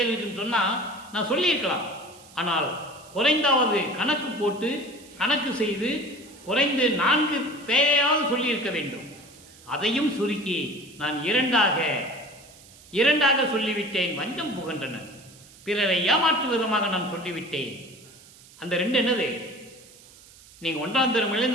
இருக்குன்னு சொன்னா நான் சொல்லியிருக்கலாம். ஆனால் குறைந்தாவது கணக்கு போட்டு கணக்கு செய்து குறைந்து 4 பெயராவது சொல்லியிருக்க வேண்டும். அதையும் சுருக்கி நான் 2ஆக சொல்லிவிட்டேன். வஞ்சம் புகன்றனர். பிறரை ஏமாற்றும் விதமாக நான் சொல்லிவிட்டேன். அந்த 2 என்னது? நீங்க 1ஆம்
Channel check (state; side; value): noise; right; hiss, 23 dB below the sound